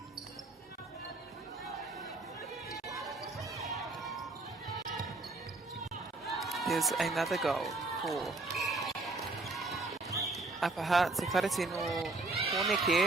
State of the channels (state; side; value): quieter; left; 3.2 dB